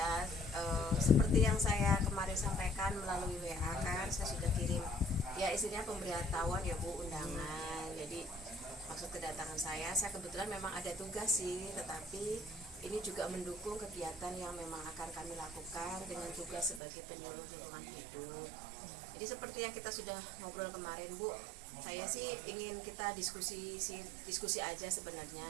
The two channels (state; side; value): drops out; left; at 16.8 s